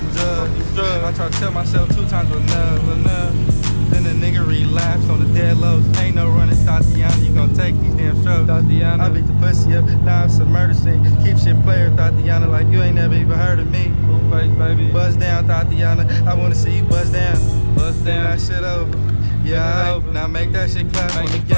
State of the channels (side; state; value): both; inverted; correlation -1.00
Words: drugs. I tried to tell myself 2 times enough. Then the nigga relapsed on the dead lows. Ain't no running, Tatiana. You gon' take these damn strokes. Tatiana. I beat the pussy up, now it's a murder scene. Keep shit player, Tatiana, like you ain't never even heard of me. Full face, baby. Buzz down, Tatiana. I wanna see you buzz down. Buzz down. That shit over. Yeah, over. Now make that shit clap on the